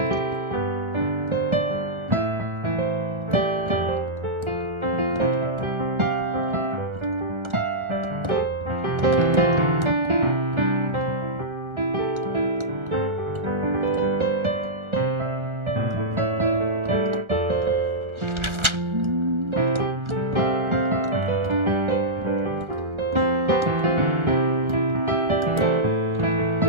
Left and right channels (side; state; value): left; late; 1.4 ms